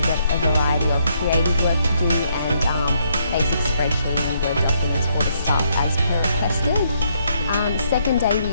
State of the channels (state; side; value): inverted; both; correlation -0.73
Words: get a variety of creative work to do and basic spreadsheet and Word documents for the staff as per requested. Second day,